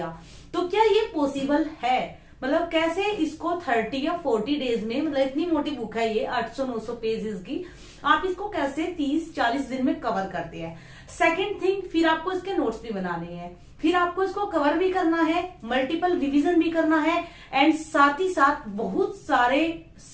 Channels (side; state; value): both; identical; correlation 1.00